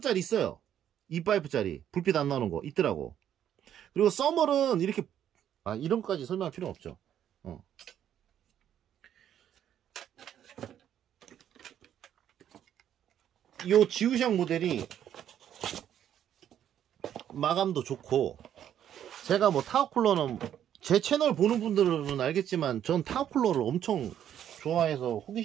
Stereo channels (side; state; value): left; quieter; 10.2 dB